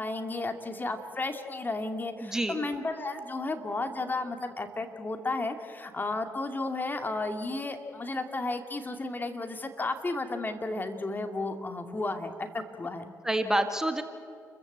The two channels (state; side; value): normal; both; correlation 0.82